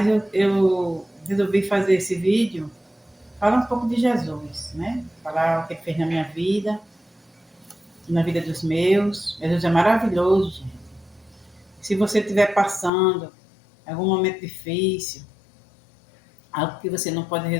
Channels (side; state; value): right; drops out; at 12.9 s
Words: eu resolvi fazer esse vídeo, falar um pouco de Jesus, né? Falar o que ele fez na minha vida, na vida dos meus. Jesus é maravilhoso, gente. Se você estiver passando algum momento difícil, algo que você não pode